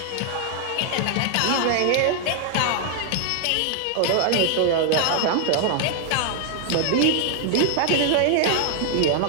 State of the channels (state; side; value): different; both; correlation 0.00